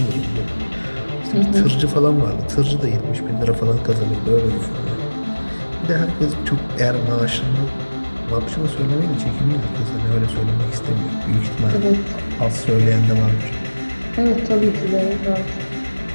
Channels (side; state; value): both; inverted; correlation -1.00